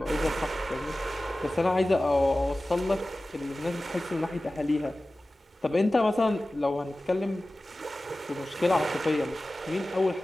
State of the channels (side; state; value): both; normal; correlation 0.96